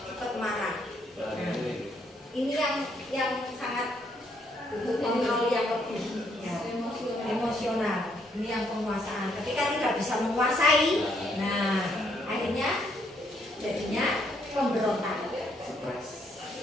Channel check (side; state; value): both; normal; correlation 0.71